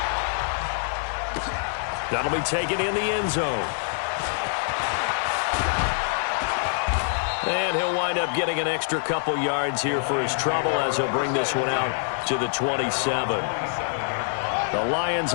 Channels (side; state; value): right; silent; digital silence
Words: That'll be taken in the end zone. And he'll wind up getting an extra couple yards here for his trouble as he'll bring this one out to the 27. The Lions